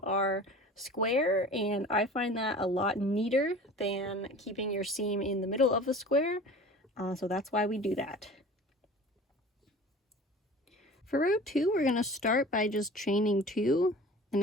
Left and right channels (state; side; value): normal; both; correlation 0.41